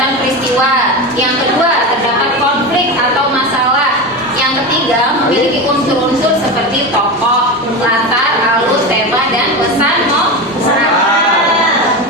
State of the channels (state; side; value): normal; both; correlation 0.22